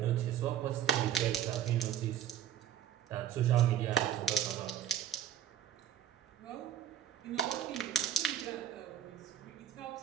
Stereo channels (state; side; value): quieter; left; 9.6 dB